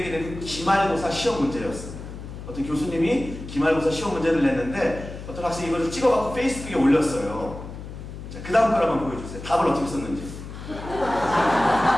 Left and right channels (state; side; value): noise; left; hum, 11 dB below the sound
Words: 낸 기말고사 시험 문제였습니다. 어떤 교수님이 기말고사 시험 문제를 냈는데 어떤 학생이 이걸 찍어갖고 페이스북에 올렸어요. 자, 그 다음 걸 한번 보여주세요. 답을 어떻게 썼는지.